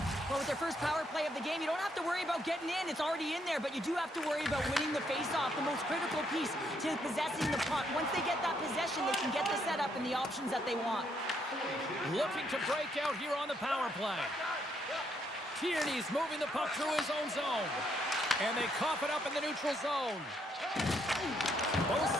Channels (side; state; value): both; normal; correlation 0.74